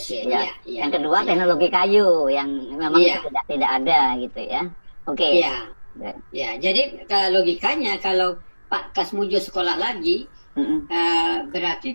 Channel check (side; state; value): both; inverted; correlation -1.00